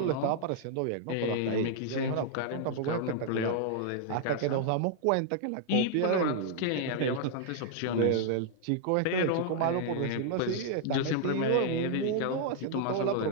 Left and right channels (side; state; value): both; different; correlation -0.01